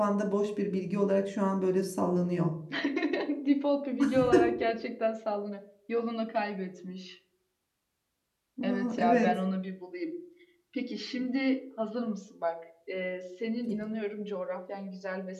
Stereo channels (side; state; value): both; identical; correlation 1.00